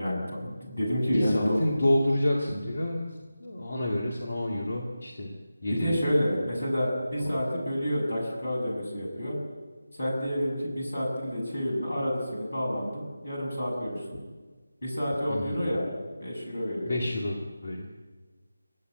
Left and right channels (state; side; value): inverted; both; correlation -0.93